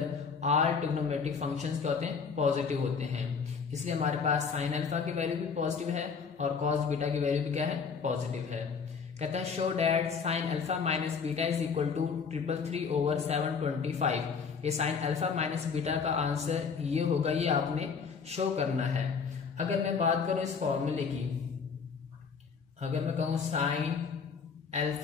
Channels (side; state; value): right; quieter; 5.7 dB